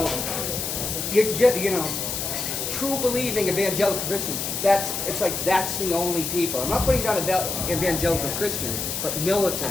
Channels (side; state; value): left; noise; hiss, 3 dB below the sound